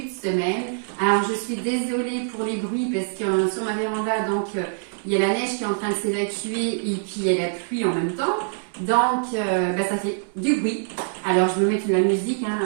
de semaine. Alors je suis désolée pour les bruits parce que sur ma véranda, donc il y a la neige qui est en train de s'évacuer et puis il y a la pluie en même temps. Donc ça fait du bruit. Alors je vais mettre de la musique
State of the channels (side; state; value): left; silent; 63 dB below the other